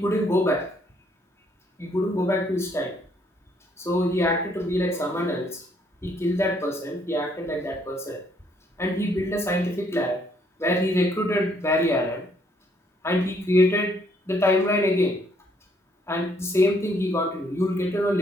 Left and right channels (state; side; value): normal; both; correlation 0.68